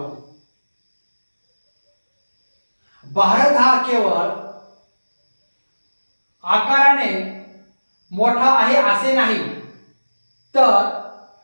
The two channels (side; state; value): both; inverted; correlation -1.00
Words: भारत हा केवळ आकाराने मोठा आहे असे नाही, तर